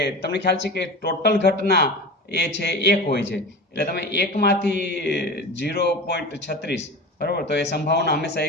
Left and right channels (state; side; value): normal; both; correlation 0.31